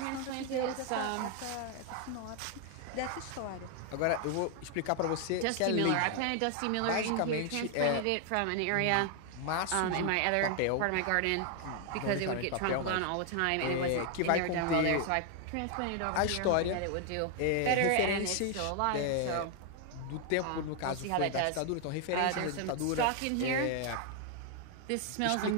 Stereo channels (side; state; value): both; different; correlation 0.00